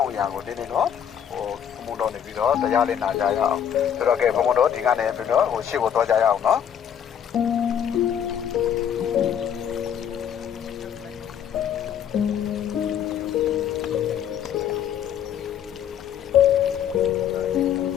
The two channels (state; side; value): quieter; right; 8.9 dB